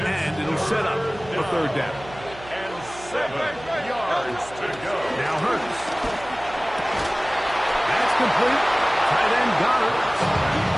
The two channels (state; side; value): noise; right; hum, 18 dB below the sound